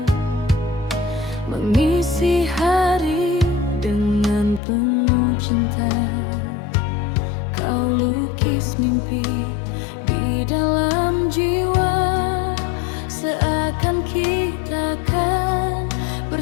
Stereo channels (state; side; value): drops out; right; at 4.6 s